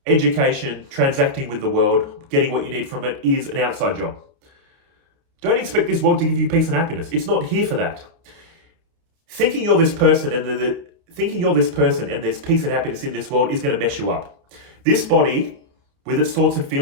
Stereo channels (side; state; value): left; late; 29 ms